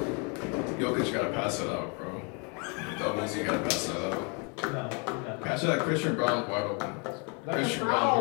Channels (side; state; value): right; quieter; 34.8 dB